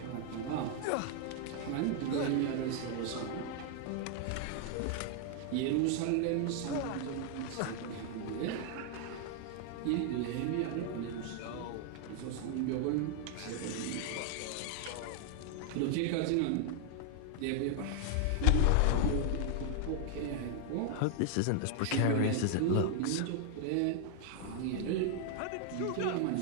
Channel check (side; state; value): both; different; correlation 0.00